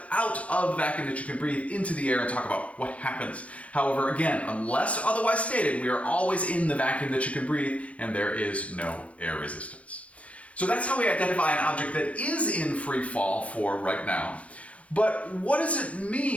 out of the vacuum that you can breathe into the air and talk about what happens. However, again, unless otherwise stated, we are always in the vacuum that you can breathe and there is no air resistance. So that's how we identify an object that is in free fall for right now. But what does it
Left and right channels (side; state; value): right; late; 0.064 ms